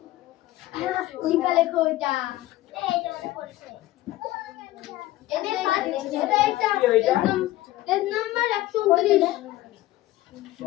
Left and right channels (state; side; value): quieter; right; 16.5 dB